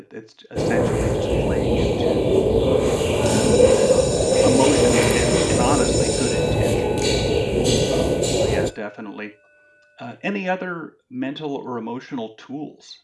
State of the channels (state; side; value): identical; both; correlation 1.00